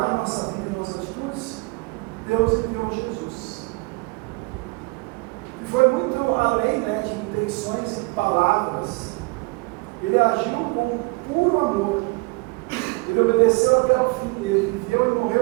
a nossa vida e nossas atitudes, Deus enviou Jesus. E foi muito além, né, de intenções e palavras. Ele agiu com puro amor. Ele obedeceu até o fim. Ele viveu e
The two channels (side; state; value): left; quieter; 26.9 dB